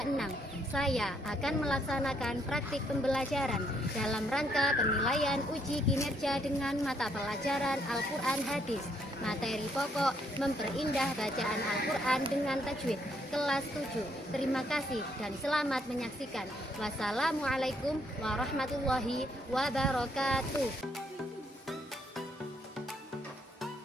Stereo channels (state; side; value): normal; both; correlation 0.71